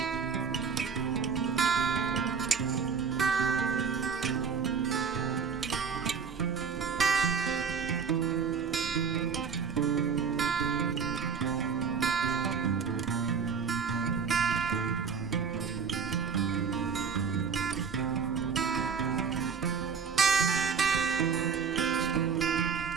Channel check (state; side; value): quieter; left; 6.2 dB